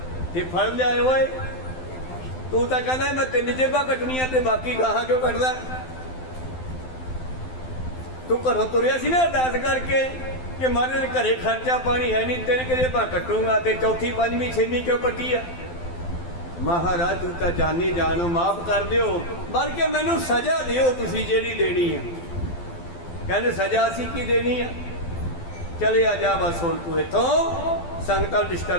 ਤੇ ਫੜ ਲਿਆਏ। ਓਏ ਤੂੰ ਤਾਂ ਕਹਿੰਦਾ ਮੈਂ 3 ਜੇਬਾਂ ਕੱਟਣੀਆਂ ਤੇ ਬਾਕੀ ਗਾਹਾਂ ਕਿਉਂ ਕੱਟਦਾ? ਤੂੰ ਘਰੋਂ ਤੁਰਿਆ ਸੀ ਨਾ ਅਰਦਾਸ ਕਰਕੇ ਕਿ ਮਹਾਰਾਜ ਘਰੇ ਖਰਚਾ ਪਾਣੀ ਹੈ ਨਹੀਂ, 3 ਜੇਬਾਂ ਕੱਟੂੰਗਾ ਤੇ ਚੌਥੀ, 5ਵੀਂ, 6ਵੀਂ ਕਿਉਂ ਕੱਟੀ ਆ? ਮਹਾਰਾਜ ਤੂੰ ਤਾਂ ਜਾਨੀ ਜਾਨੋ, ਮਾਫ ਕਰ ਦਿਓ, ਬਲਕਿ ਮੈਨੂੰ ਸਜ਼ਾ ਦਿਓ ਤੁਸੀਂ ਜਿਹੜੀ ਦੇਣੀ ਆ। ਕਹਿੰਦੇ ਸਜ਼ਾ ਅਸੀਂ ਕੀ ਦੇਣੀ ਆ? ਚਲੇ ਆ ਜਾ, ਬਸ ਹੁਣ ਤੂੰ ਇੱਥੋਂ ਸੰਗਤਾਂ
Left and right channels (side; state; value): right; late; 12 ms